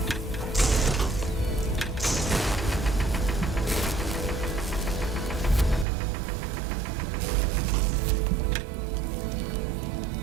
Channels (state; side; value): drops out; left; at 5.9 s